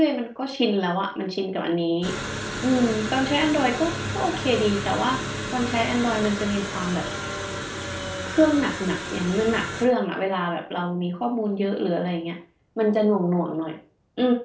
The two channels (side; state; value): both; identical; correlation 1.00